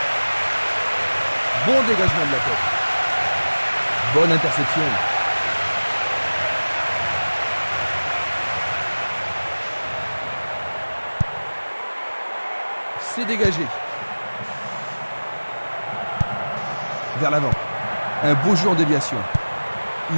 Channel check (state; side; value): inverted; both; correlation -1.00